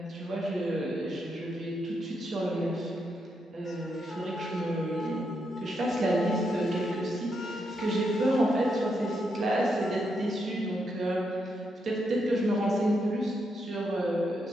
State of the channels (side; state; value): both; normal; correlation 0.81